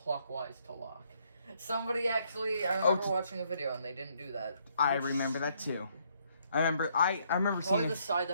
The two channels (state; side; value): inverted; both; correlation -0.70